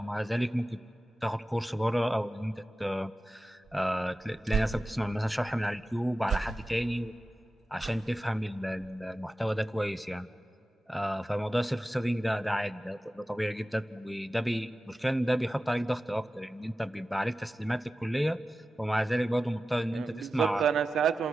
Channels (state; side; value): normal; both; correlation 0.94